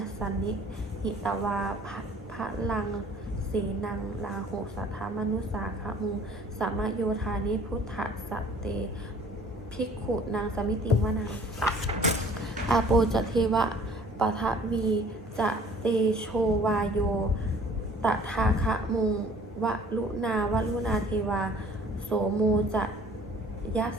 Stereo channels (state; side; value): normal; both; correlation 0.53